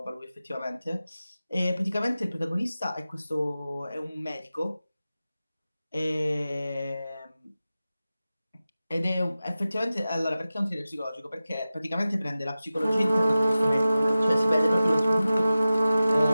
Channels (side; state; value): both; inverted; correlation -0.95